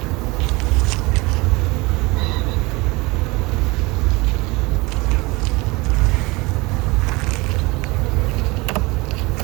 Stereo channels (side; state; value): left; quieter; 23.9 dB